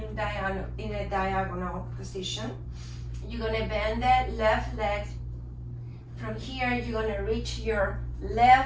a diagonal position. You're gonna bend the left leg. From here, you're gonna reach your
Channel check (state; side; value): identical; both; correlation 1.00